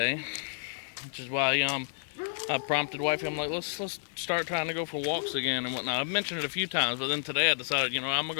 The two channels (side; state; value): right; silent; digital silence